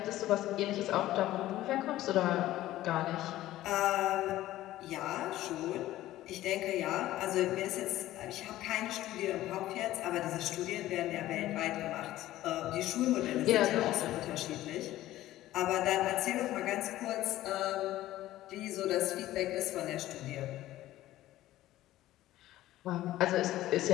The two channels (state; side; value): quieter; right; 15.0 dB